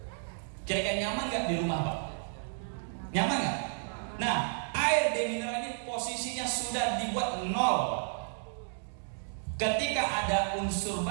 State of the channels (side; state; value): left; silent; digital silence